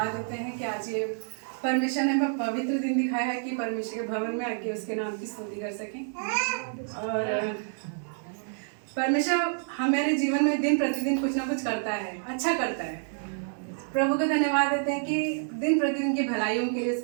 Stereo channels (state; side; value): silent; left; 59 dB below the other